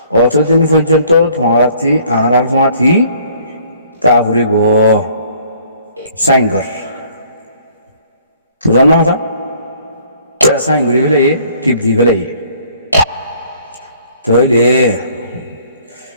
অতদিন পর্যন্ত তোমারাতি আর তোমাতি তা ঘুরিব সাইন কর বুঝার না কথা সাইন করি ফেলে টিপ দি ফেলে তাহলে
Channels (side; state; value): both; inverted; correlation -0.58